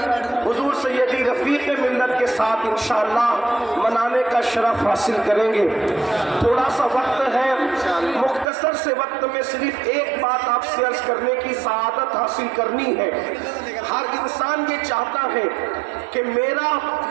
حضور سیدی رفیق ملت کے ساتھ انشاءاللہ منانے کا شرف حاصل کریں گے۔ تھوڑا سا وقت ہے، مختصر سے وقت میں صرف ایک بات آپ سے عرض کرنے کی سعادت حاصل کرنی ہے۔ ہر انسان یہ چاہتا ہے کہ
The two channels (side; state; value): left; drops out; at 8.5 s